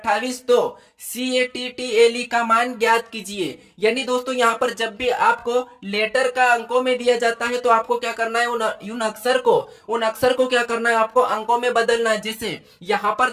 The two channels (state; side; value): identical; both; correlation 1.00